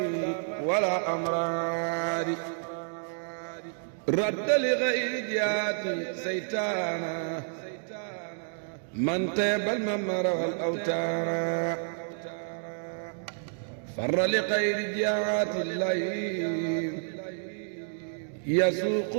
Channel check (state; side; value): silent; left; digital silence